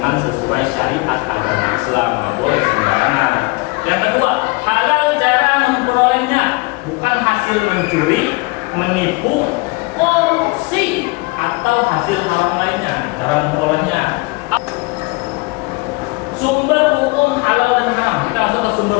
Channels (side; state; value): right; quieter; 26.1 dB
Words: sesuai syariat agama Islam, nggak boleh sembarangan. Yang kedua, halal cara memperolehnya, bukan hasil mencuri, menipu, korupsi, atau hasil haram lainnya. Cara memperolehnya. Sumber hukum halal dan haram. Kita masuk ke sumber